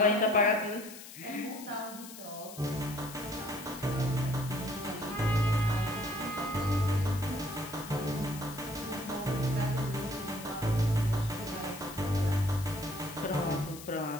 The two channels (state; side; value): noise; left; hiss, 14 dB below the sound